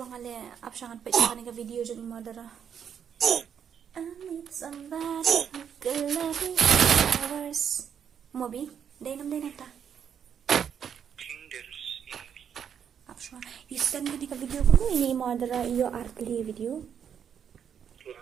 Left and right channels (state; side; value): quieter; left; 8.1 dB